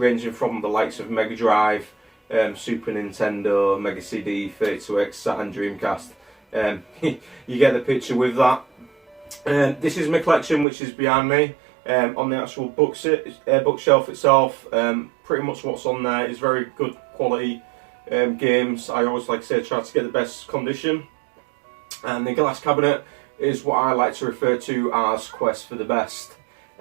from the likes of Mega Drive, Super Nintendo, Mega CD, 32X, Saturn, Dreamcast. You get the picture with that. This is my collection, which is behind me. On the actual bookshelf itself, pretty much what's on there is very good quality games. I always, like I say, try to get the best condition. And the glass cabinet is what I like to refer to as Quest for the Best.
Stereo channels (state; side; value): drops out; left; at 10.7 s